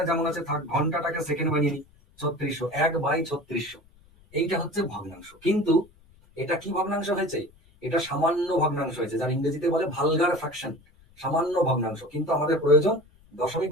যেমন আছে থাক, ঘন্টাটাকে সেকেন্ড বানিয়ে নিই। 3600, 1/3600, এইটা হচ্ছে ভগ্নাংশ। কিন্তু এটা কি ভগ্নাংশ হয়েছে? এটা সামান্য ভগ্নাংশ হয়েছে, যার ইংরেজিতে বলে ভালগার ফ্র্যাকশন, সামান্য ভগ্নাংশ। কিন্তু আমাদের প্রয়োজন দশমিক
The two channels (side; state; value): left; noise; rumble, 29 dB below the sound